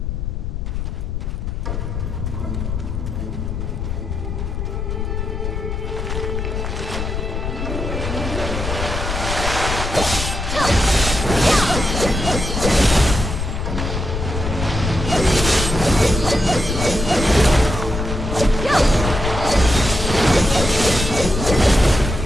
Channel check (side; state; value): left; noise; rumble, 3 dB below the sound